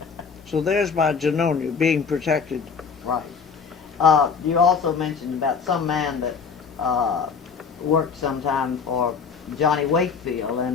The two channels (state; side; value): quieter; right; 5.8 dB